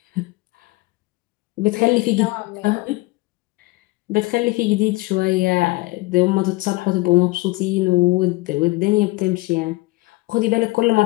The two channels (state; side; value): quieter; right; 22.1 dB